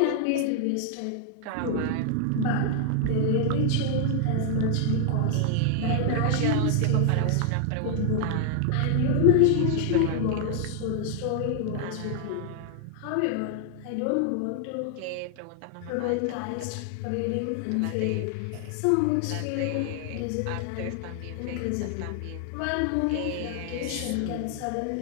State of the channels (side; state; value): both; different; correlation 0.00